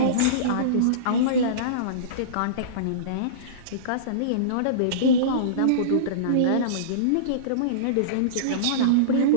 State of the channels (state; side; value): different; both; correlation -0.05